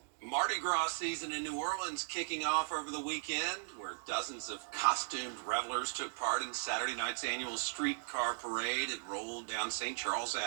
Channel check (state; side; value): silent; left; digital silence